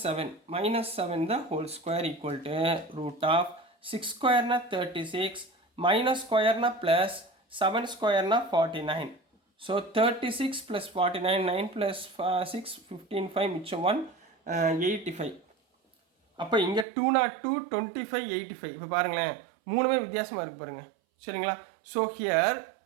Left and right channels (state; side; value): drops out; left; at 16.9 s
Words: 7 the whole square equal to root of 6 square na 36 minus square na plus 7 square na 49. So 36 plus 49, 9 plus 6, 15, 5, மிச்சம் 1, 85. அப்போ இங்கே 202, 25, 85. இப்போ பாருங்களேன், மூணுமே வித்தியாசமாக இருக்குது பாருங்கள். சரிங்களா, ஸோ ஹியர்